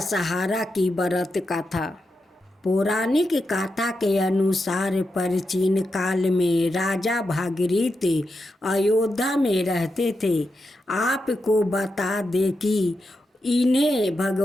की व्रत कथा। पौराणिक कथा के अनुसार प्राचीन काल में राजा भागीरथ अयोध्या में रहते थे। आपको बता दें कि इन्हें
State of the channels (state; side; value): normal; both; correlation 0.87